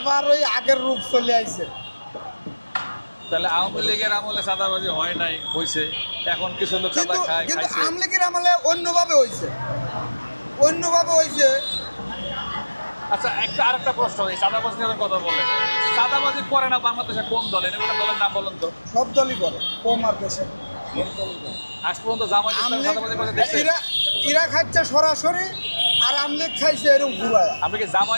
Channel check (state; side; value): inverted; both; correlation -1.00